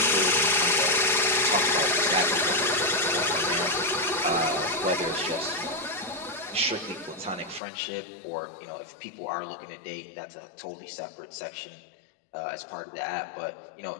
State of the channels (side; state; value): right; drops out; at 7.6 s